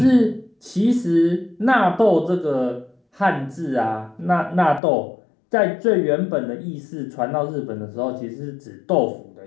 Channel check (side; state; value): right; drops out; at 4.8 s